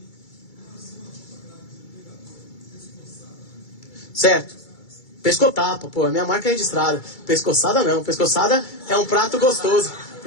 Certo. Pescotapa, pô, a minha marca é registrada. Pescoçada não, pescoçada é um prato gostoso.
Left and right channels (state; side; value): late; right; 2.3 ms